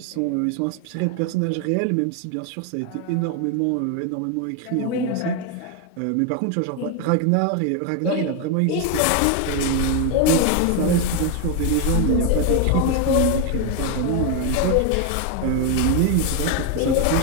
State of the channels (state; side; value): different; both; correlation 0.01